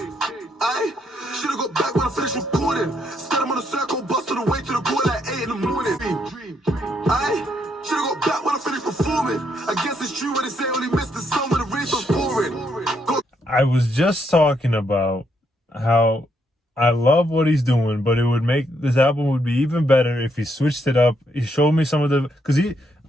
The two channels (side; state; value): both; normal; correlation 0.75